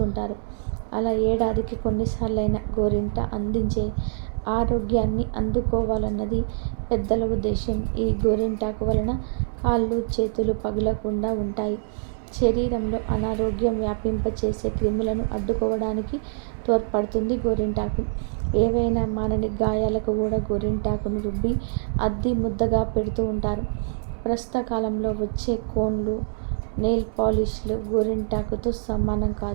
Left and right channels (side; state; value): left; silent; 62 dB below the other